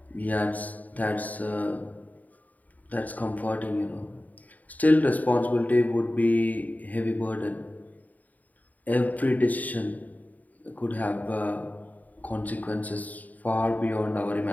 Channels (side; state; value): right; late; 0.076 ms